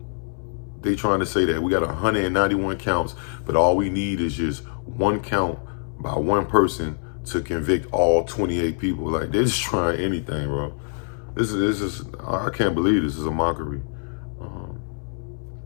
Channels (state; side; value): silent; right; 62 dB below the other